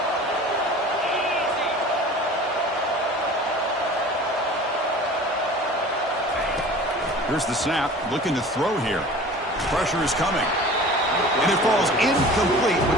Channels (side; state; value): both; normal; correlation 0.41